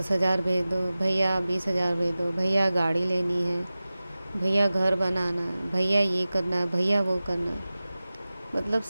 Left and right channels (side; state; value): both; inverted; correlation -0.97